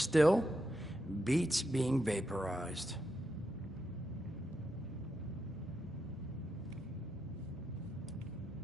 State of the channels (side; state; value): both; normal; correlation 0.84